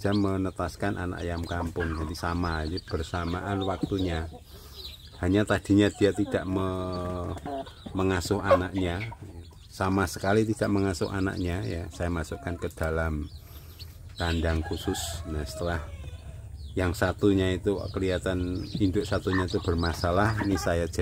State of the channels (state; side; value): identical; both; correlation 1.00